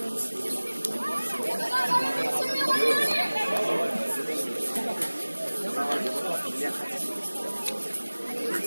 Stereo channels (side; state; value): both; inverted; correlation -1.00